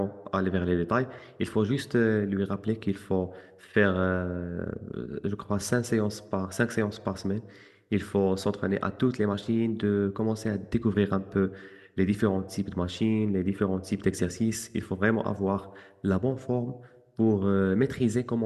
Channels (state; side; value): identical; both; correlation 1.00